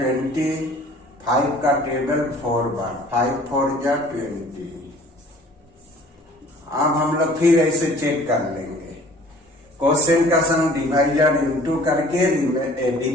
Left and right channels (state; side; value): normal; both; correlation 0.51